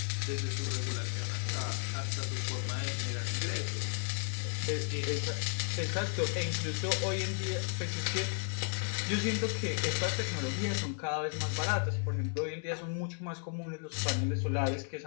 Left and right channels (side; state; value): right; silent; 55 dB below the other